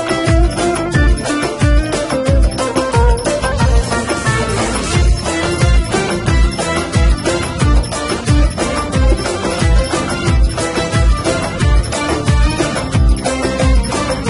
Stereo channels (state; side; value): identical; both; correlation 1.00